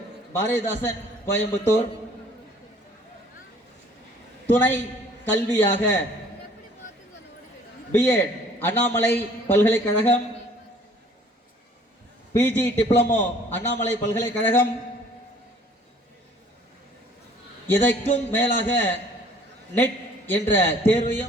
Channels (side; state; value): both; normal; correlation 0.55